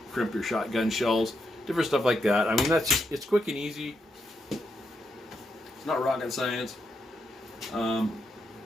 crimp your shotgun shells, different stuff like that. I mean, that's just, it's quick and easy. It's not rocket science.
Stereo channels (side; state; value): both; normal; correlation 0.82